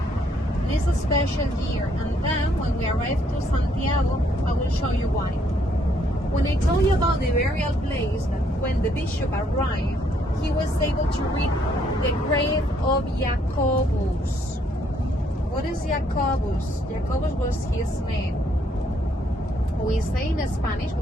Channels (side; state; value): both; normal; correlation 0.69